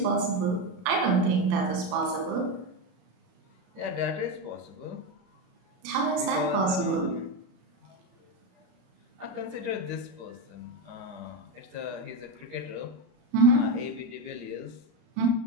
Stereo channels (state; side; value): late; left; 33 ms